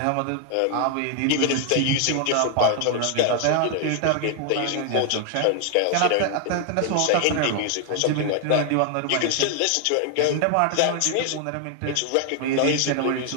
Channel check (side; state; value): both; different; correlation 0.00